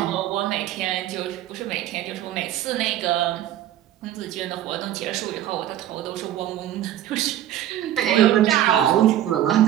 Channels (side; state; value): left; quieter; 12.2 dB